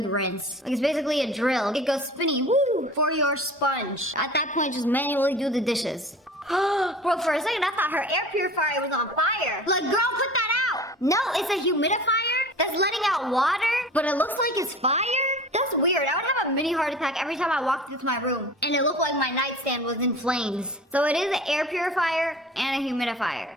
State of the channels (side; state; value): both; normal; correlation 0.40